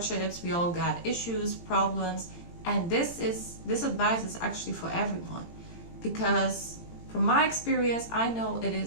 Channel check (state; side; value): late; right; 18 ms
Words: We all got issues, problems, and this advice is actually for everyone, because from my experience, I know it